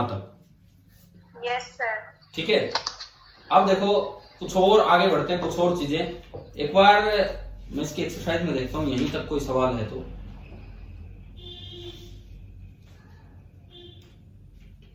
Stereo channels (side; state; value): both; identical; correlation 1.00